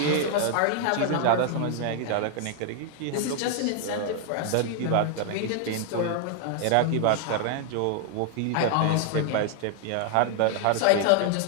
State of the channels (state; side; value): different; both; correlation 0.00